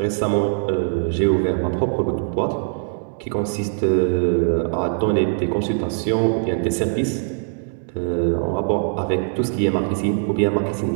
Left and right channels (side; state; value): left; silent; digital silence